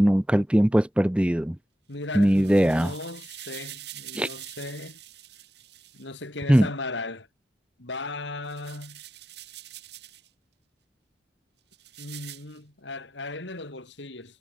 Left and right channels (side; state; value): both; normal; correlation 0.91